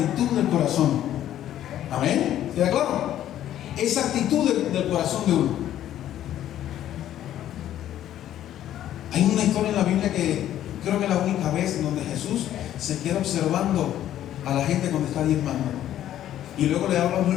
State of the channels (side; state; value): right; quieter; 11.9 dB